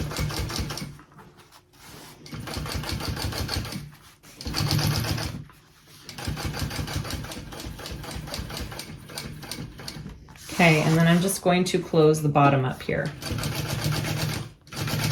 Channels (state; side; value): identical; both; correlation 1.00